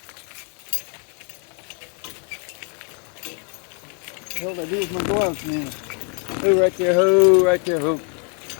What the hell did I do with my gloves, man? Who right there? Who right there? Who?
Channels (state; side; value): quieter; right; 39.5 dB